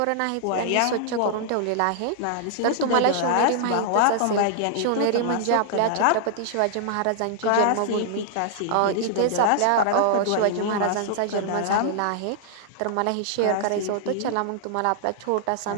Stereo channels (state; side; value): different; both; correlation -0.01